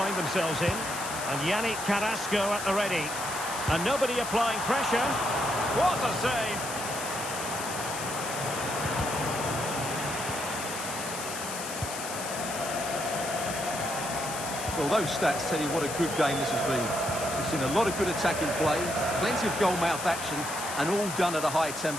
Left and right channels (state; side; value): noise; left; hiss, 7 dB below the sound